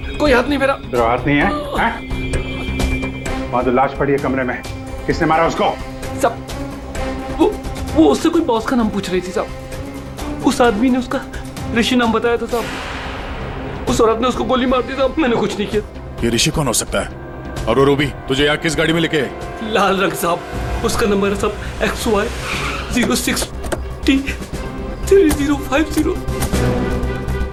कोई हाथ नहीं मेरा। तेरा हाथ नहीं है? वहां तो लाश पड़ी है कमरे में, किसने मारा उसको? साहब वो उससे कोई बॉस का नाम पूछ रही थी साहब। उस आदमी ने उसका ऋषि नाम बताया था साहब। उस औरत ने उसको गोली मार दी साहब, मैंने कुछ नहीं किया। ये ऋषि कौन हो सकता है? और वो रूबी तुझे यहाँ किस गाड़ी में लेके? लाल रंग साहब, उसका नंबर है साहब XY 06T3050।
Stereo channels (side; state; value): both; identical; correlation 1.00